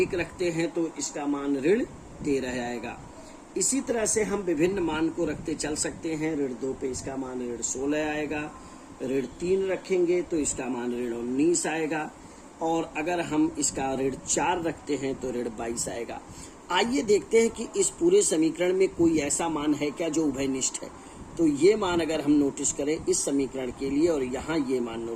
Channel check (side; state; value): both; identical; correlation 1.00